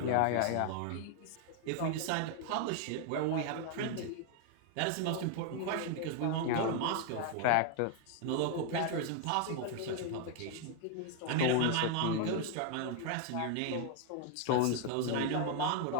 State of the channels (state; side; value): different; both; correlation 0.00